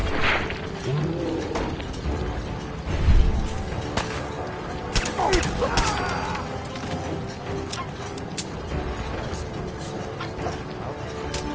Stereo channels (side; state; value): both; identical; correlation 1.00